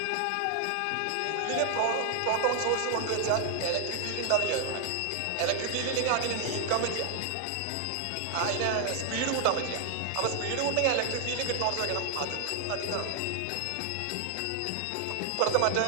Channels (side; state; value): both; different; correlation 0.00